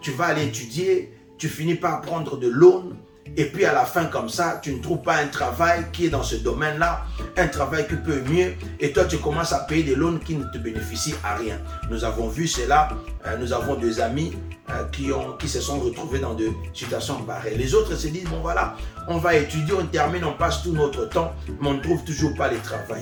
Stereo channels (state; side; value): identical; both; correlation 1.00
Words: Tu vas aller étudier, tu finis par prendre de l'aune et puis à la fin comme ça, tu ne trouves pas un travail qui est dans ce domaine-là, un travail qui peut mieux et toi tu commences à payer des loans qui ne te bénéficient à rien. Nous avons vu cela, nous avons des amis qui se sont retrouvés dans des situations pareilles. Les autres se disent, bon voilà, on va étudier, on termine, on passe tout notre temps, mais on ne trouve toujours pas le